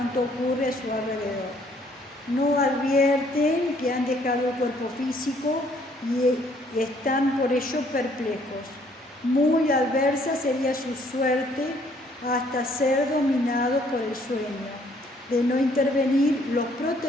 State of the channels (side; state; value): both; normal; correlation 0.64